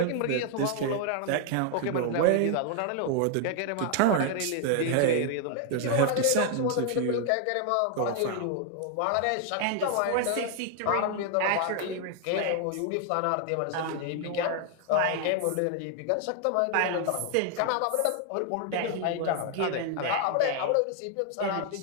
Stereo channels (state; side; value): different; both; correlation 0.00